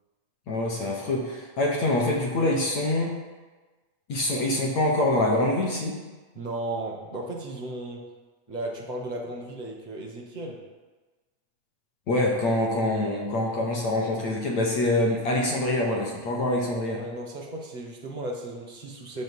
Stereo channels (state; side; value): late; right; 8.7 ms